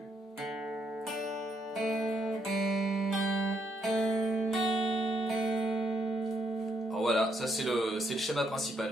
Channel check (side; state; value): both; normal; correlation 0.75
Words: Alors voilà, ça c'est le schéma